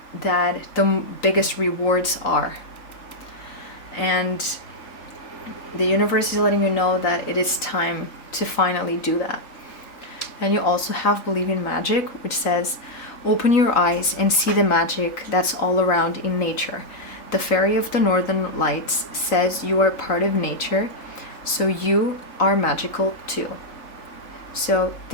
that the biggest rewards are. And the universe is letting you know that it is time to finally do that. And you also have Believe in Magic, which says, open your eyes and see the magic that's all around in nature. The Fairy of the Northern Lights says you are part of nature, so you are magical too. So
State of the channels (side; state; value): right; late; 3.9 ms